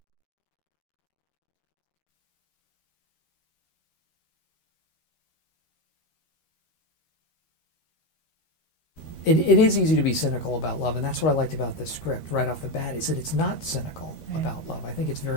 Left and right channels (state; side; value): late; right; 13 ms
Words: It is easy to be cynical about love, and that's what I liked about this script right off the bat, is that it's not cynical about love. I think it's